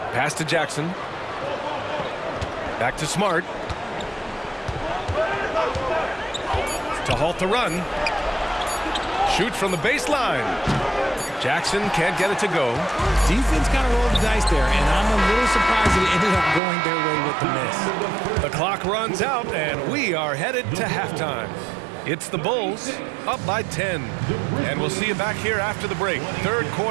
Pass to Jackson. Back to Smart. To halt the run. Shoots from the baseline. Jackson can't get it to go. Defense kind of rolled the dice there, and I'm a little surprised that it ended up going their way with the miss. The clock runs out, and we are headed to halftime. It's the Bulls up by 10. And we'll see you back here after the break. Third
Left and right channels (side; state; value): left; drops out; at 16.6 s